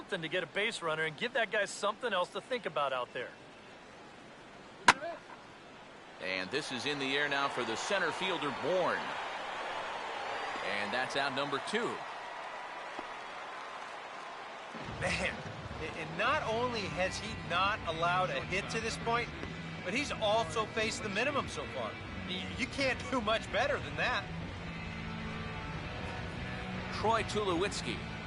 to get a base runner and give that guy something else to think about out there. And this is in the air now for the center fielder, Bourne. And that's out number 2. Man, and not only has he not allowed a hit to this point, but he's also faced the minimum so far. You can't do much better than that. Troy Tulowitzki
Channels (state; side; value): identical; both; correlation 1.00